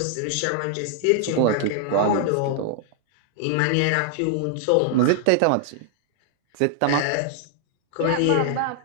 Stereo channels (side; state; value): both; different; correlation 0.00